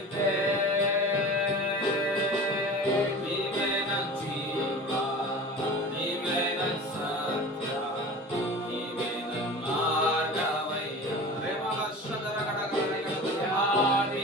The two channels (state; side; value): normal; both; correlation 0.36